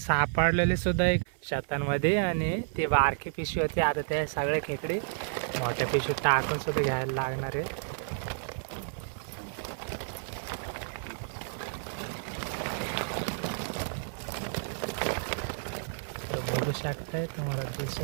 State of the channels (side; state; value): left; silent; 57 dB below the other